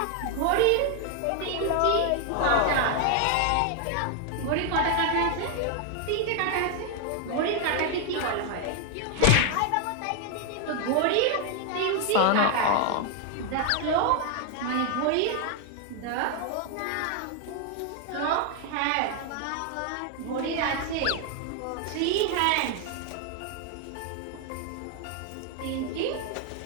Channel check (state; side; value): different; both; correlation 0.00